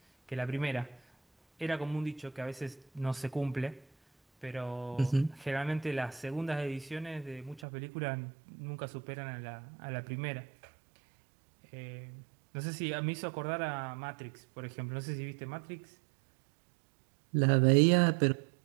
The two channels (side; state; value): left; drops out; at 7.6 s